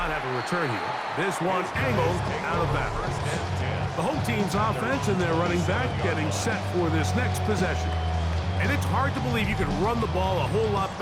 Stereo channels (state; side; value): identical; both; correlation 1.00